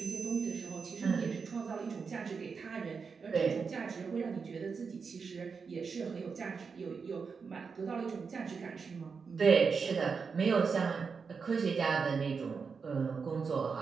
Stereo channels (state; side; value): quieter; left; 5.4 dB